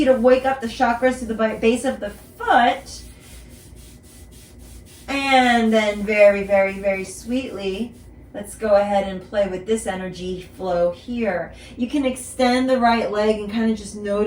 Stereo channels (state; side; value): identical; both; correlation 1.00